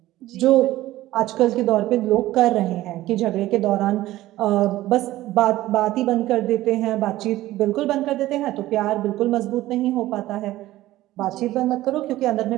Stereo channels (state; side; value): quieter; left; 15.9 dB